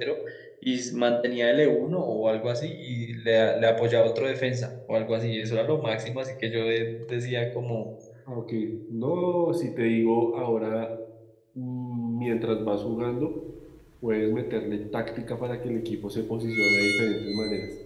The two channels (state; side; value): identical; both; correlation 1.00